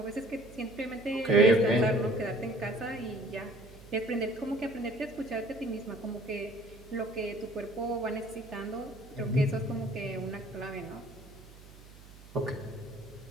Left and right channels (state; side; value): noise; right; hum, 20 dB below the sound